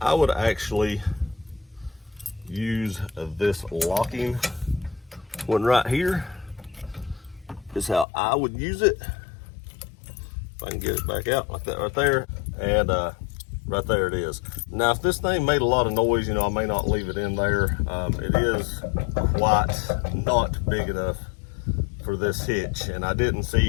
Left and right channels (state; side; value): drops out; right; at 8.1 s